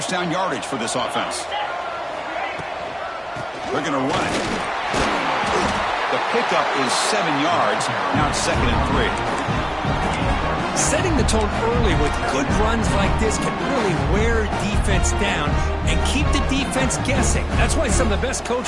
down yardage for this offense. They're going to run it. The pickup is 7 yards. Now it's 2nd and 3. Setting the tone early with good runs like this can really wear defense down and keep the defense guessing. That's why some of the best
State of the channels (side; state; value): both; identical; correlation 1.00